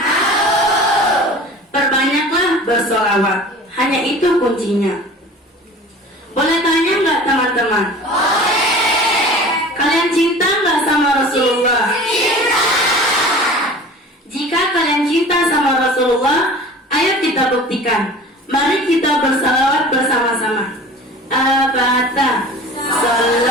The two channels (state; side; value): normal; both; correlation 0.41